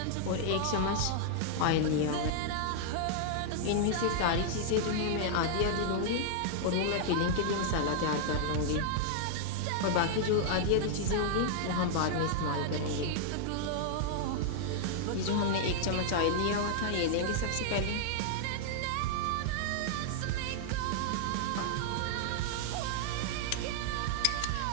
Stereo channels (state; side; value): different; both; correlation -0.01